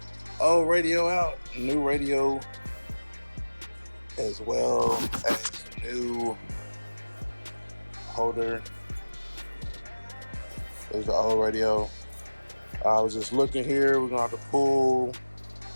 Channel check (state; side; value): inverted; both; correlation -1.00